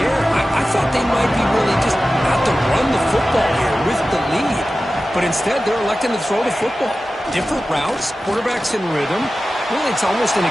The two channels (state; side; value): normal; both; correlation 0.95